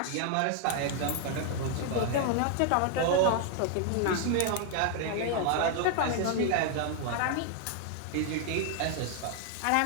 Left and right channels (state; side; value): different; both; correlation 0.00